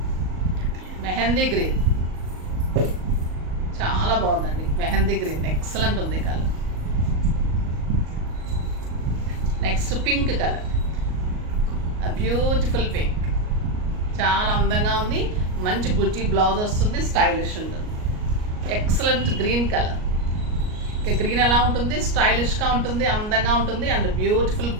మెహందీ గ్రీన్, చాలా బాగుందండి. మెహందీ గ్రీన్ ఎక్సలెంట్ ఉంది colour. Next pink colour, beautiful pink, చాలా అందంగా ఉంది. మంచి బుట్టి బ్లౌజ్ వస్తుంది, స్టైలిష్ ఉంటుంది. Excellent green colour. గ్రీన్ ఎలా ఉంటుంది, స్టైలిష్గా ఉంటుంది, అందంగా ఉంటుంది. అండ్ బ్యూటిఫుల్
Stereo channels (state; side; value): late; left; 38 ms